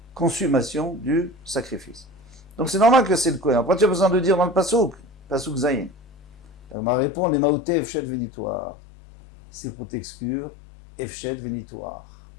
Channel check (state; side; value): drops out; right; at 6.8 s